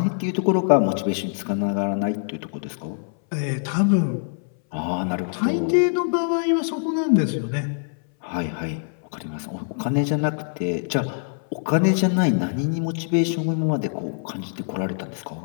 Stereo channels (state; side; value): silent; right; 60 dB below the other